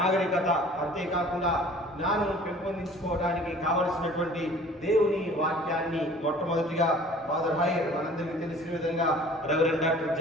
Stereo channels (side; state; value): both; normal; correlation 0.48